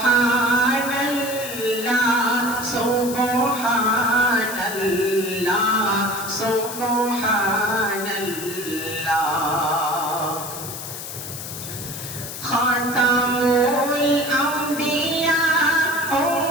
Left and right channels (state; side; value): noise; left; hiss, 9 dB below the sound